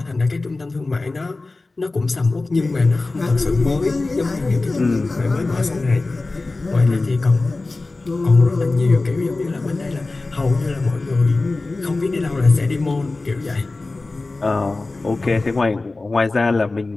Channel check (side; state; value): right; quieter; 3.3 dB